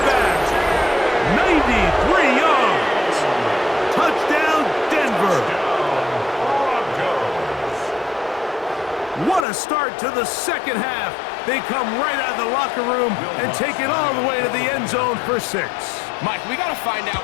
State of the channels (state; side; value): drops out; right; at 9.5 s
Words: back. 93 yards. Touchdown, Denver. What a start to the second half. They come right out of the locker room and take it all the way to the end zone for 6. Mike, we got to find out